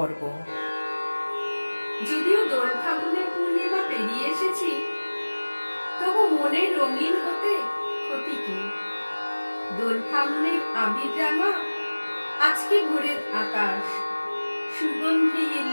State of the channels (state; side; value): inverted; both; correlation -1.00